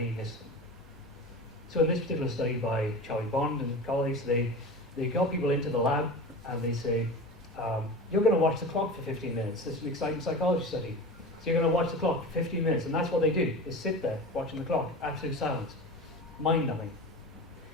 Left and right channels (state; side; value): normal; both; correlation 0.31